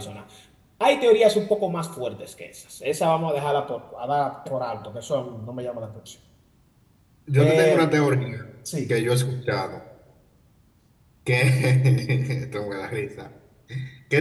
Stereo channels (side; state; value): both; identical; correlation 1.00